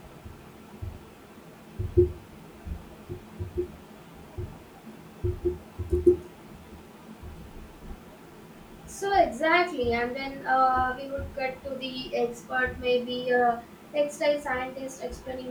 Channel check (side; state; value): both; identical; correlation 1.00